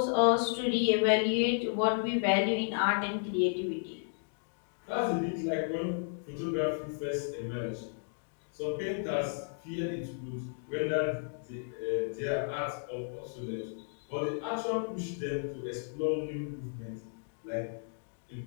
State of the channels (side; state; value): right; silent; digital silence